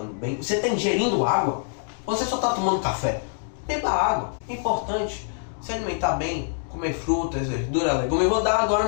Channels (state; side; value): silent; right; digital silence